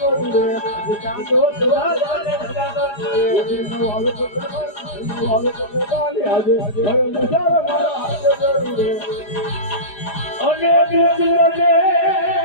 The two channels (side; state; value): right; late; 4.9 ms